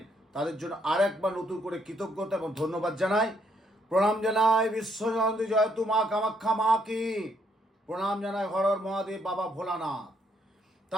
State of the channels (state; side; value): normal; both; correlation 0.72